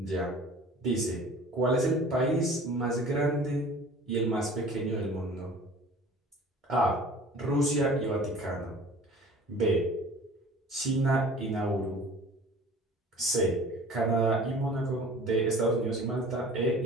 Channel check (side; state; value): both; normal; correlation 0.45